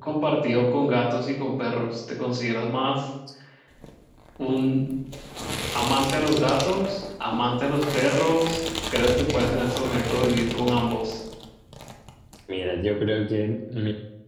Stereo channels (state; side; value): identical; both; correlation 1.00